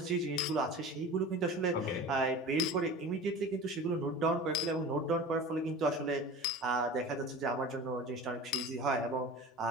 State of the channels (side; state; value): both; normal; correlation 0.36